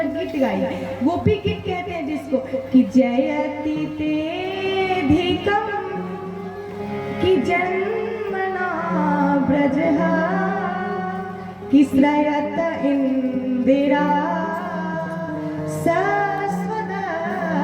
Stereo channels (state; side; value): identical; both; correlation 1.00